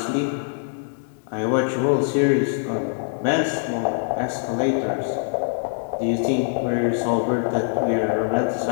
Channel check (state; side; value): silent; right; digital silence